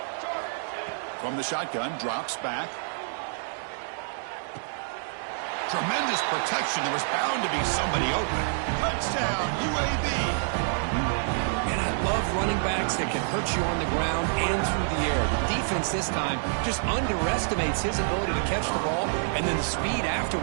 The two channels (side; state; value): left; silent; digital silence